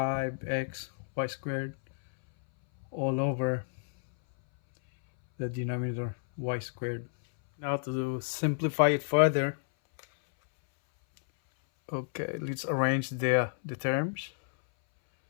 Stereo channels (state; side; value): silent; right; 58 dB below the other